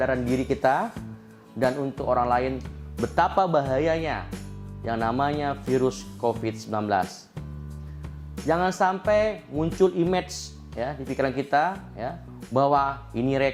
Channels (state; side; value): identical; both; correlation 1.00